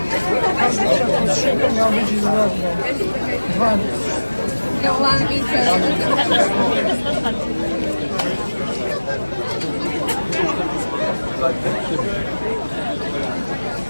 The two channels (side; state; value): both; inverted; correlation -1.00